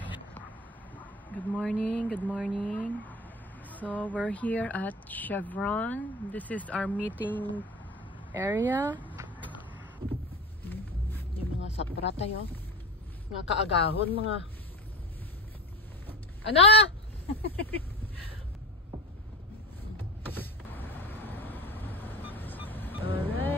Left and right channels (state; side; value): normal; both; correlation 0.29